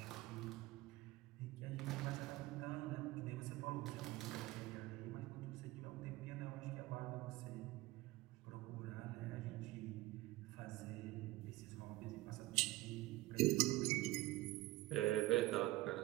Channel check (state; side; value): quieter; left; 18.3 dB